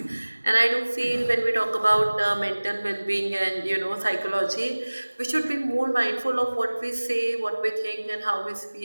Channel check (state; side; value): inverted; both; correlation -1.00